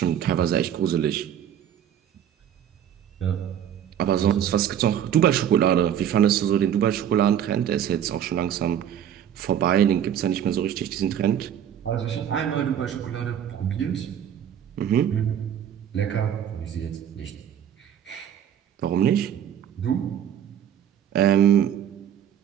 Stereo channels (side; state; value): left; quieter; 9.6 dB